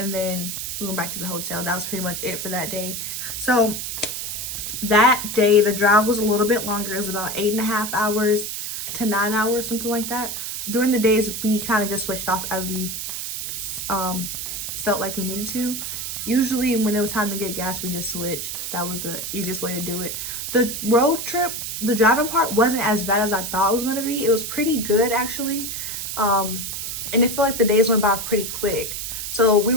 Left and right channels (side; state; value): right; noise; hiss, 5 dB below the sound